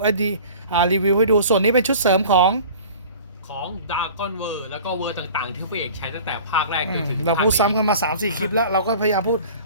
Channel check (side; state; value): both; inverted; correlation -0.43